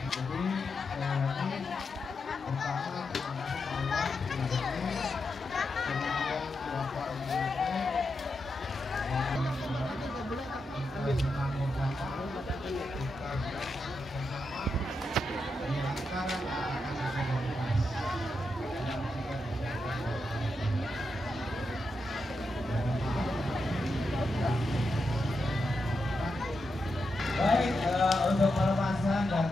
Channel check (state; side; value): normal; both; correlation 0.86